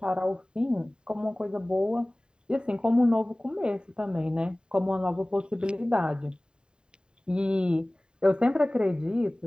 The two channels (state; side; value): late; left; 0.049 ms